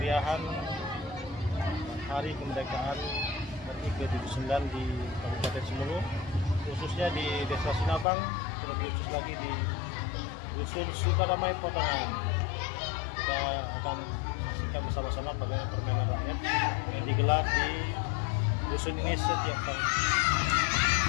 Hari Kemerdekaan RI ke-79 di Kabupaten Sumulu, khususnya di Desa Sinabang, terlebih khusus lagi di Dusun Sukadamai Potongan. Kita akan saksikan bersama-sama bagaimana permainan rakyat yang digelar di dusun ini setiap tahun.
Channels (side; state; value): right; drops out; at 8.1 s